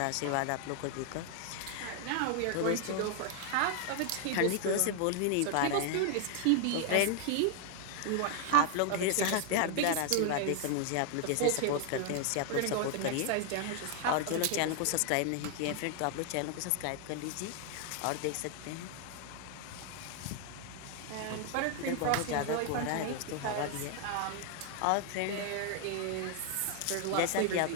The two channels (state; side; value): different; both; correlation 0.00